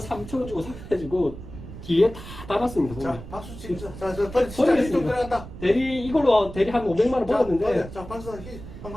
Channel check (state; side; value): noise; right; rumble, 13 dB below the sound